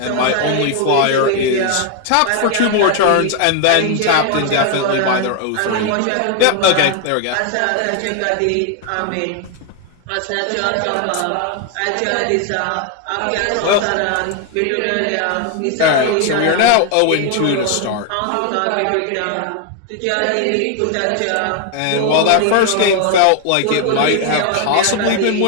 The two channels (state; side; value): different; both; correlation 0.00